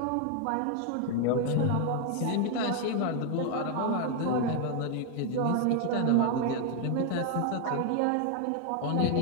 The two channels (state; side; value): different; both; correlation 0.00